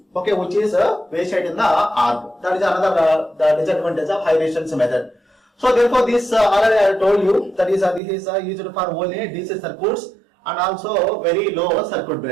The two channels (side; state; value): left; drops out; at 8.0 s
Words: okay, which is wasted in the arc. That is another the disadvantage of high resistance method. So therefore this already I told you, that is this is used for only DC circuits and also very low circuit